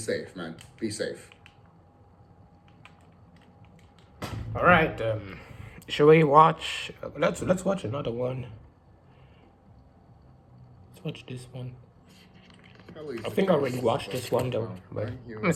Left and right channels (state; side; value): identical; both; correlation 1.00